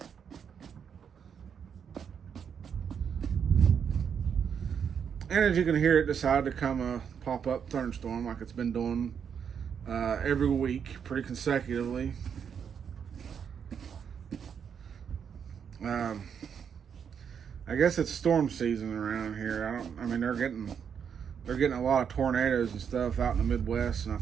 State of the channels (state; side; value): quieter; left; 7.4 dB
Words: and as you can hear, it decided to come a pop-up thunderstorm like it's been doing every week, pretty consecutively. I guess it's storm season around here. I mean, they're getting a lot of tornadoes and stuff out in the Midwest, and I